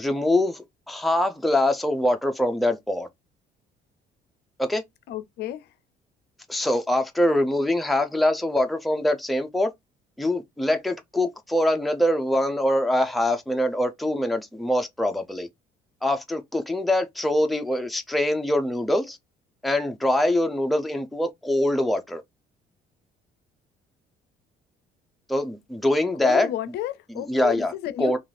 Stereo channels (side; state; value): both; normal; correlation 0.88